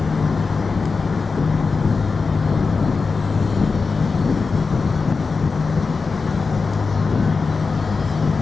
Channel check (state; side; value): quieter; right; 4.5 dB